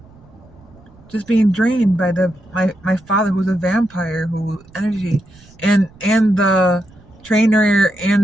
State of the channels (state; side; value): noise; right; rumble, 26 dB below the sound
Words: Just being drained by my father, who's a vampire, who energy, and the trainer